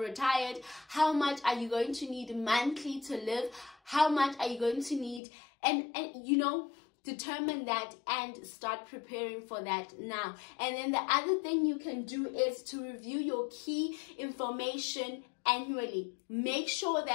how much are you going to need monthly to live? How much are you going to need? And you know, determine that and start preparing for that now. And then the other thing you can do is to review your key information annually. Make sure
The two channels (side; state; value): right; drops out; at 5.2 s